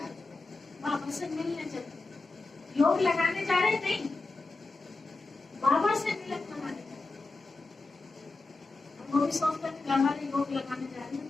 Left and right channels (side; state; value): right; quieter; 3.5 dB